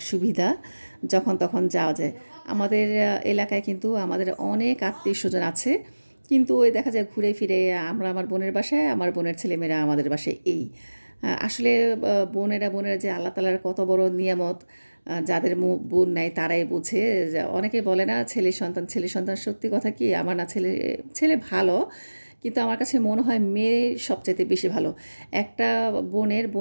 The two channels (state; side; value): inverted; both; correlation -1.00